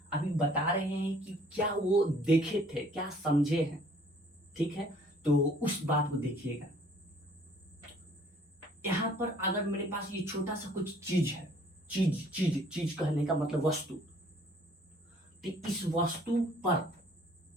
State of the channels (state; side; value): normal; both; correlation 0.57